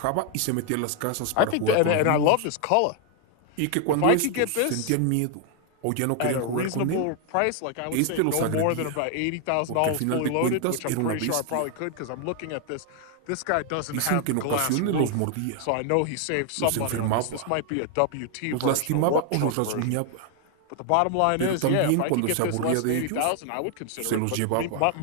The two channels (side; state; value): both; different; correlation 0.00